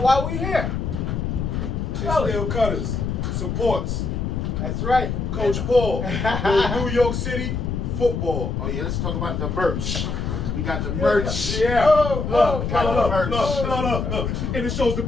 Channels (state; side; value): noise; left; rumble, 2 dB below the sound